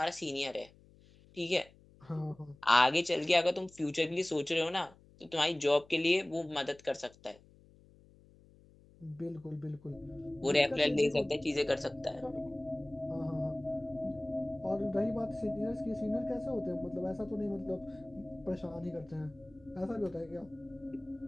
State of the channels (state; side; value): noise; left; hum, 26 dB below the sound